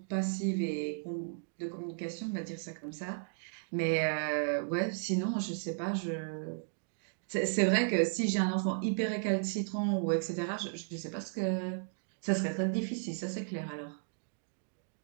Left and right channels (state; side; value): silent; left; digital silence